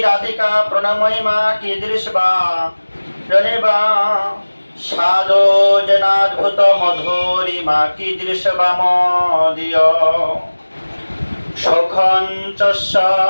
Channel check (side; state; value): both; inverted; correlation -1.00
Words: রাধিকা প্রণমহিমা কীদৃশ বা রণেবা সাধো জনাদ্ভুত মধুরিমা কীদৃশ বা মদীয় সখঞ্চস্য